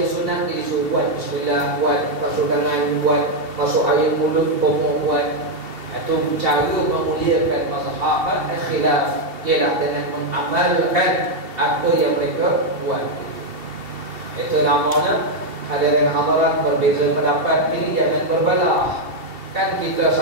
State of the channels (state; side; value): late; left; 2.7 ms